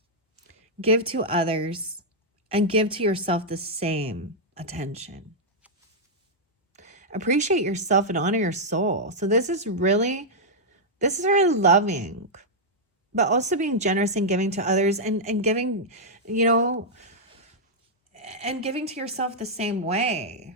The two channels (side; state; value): both; normal; correlation -0.06